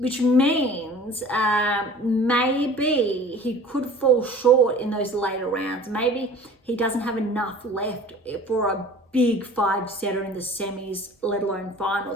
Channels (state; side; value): normal; both; correlation 0.44